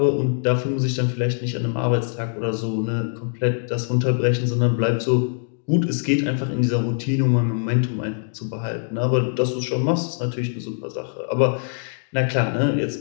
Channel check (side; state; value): right; silent; digital silence